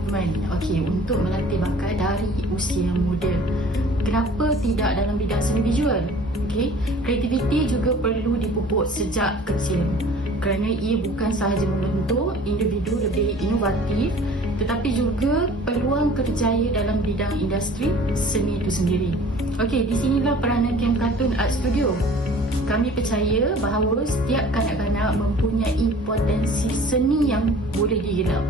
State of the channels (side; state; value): both; normal; correlation 0.48